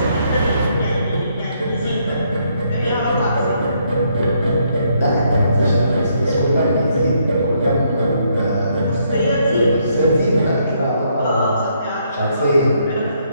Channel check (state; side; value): inverted; both; correlation -0.73